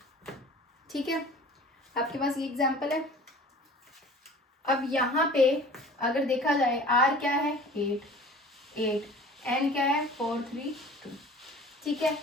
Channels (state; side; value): normal; both; correlation 0.44